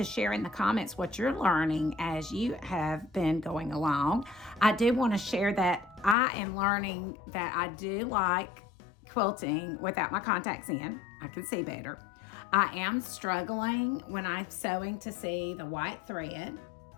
share in the comments what you're learning as you have been going along. I do want to share that I am learning that I do like quilting without my contacts in. I can see better. I am struggling when I'm sewing to see the white thread.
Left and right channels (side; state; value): right; drops out; at 6.2 s